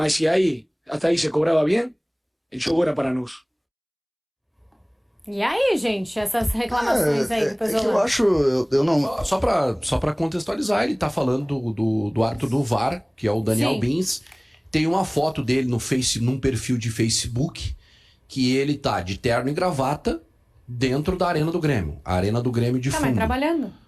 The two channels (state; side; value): identical; both; correlation 1.00